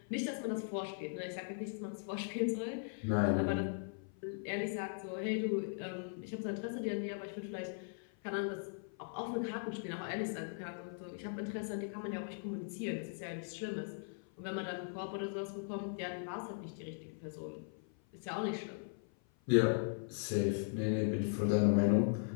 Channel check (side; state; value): right; silent; 52 dB below the other